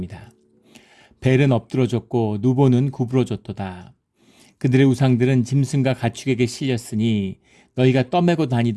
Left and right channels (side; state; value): both; identical; correlation 1.00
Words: 벨은 엎드러졌고 누보는 구부러졌도다. 그들의 우상들은 짐승과 가축에게 실렸으니 너희가 떠매고